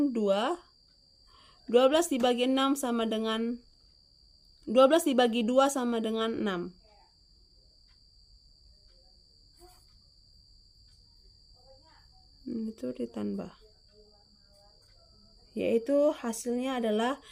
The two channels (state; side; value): identical; both; correlation 1.00